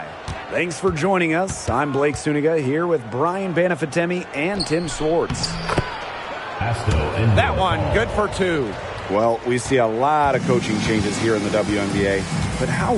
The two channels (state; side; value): identical; both; correlation 1.00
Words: Thanks for joining us. I'm Blake Suniga here with Brian Banafitemi and Tim Swartz. That one, good for two. Well, we see a lot of coaching changes here in the WNBA, but how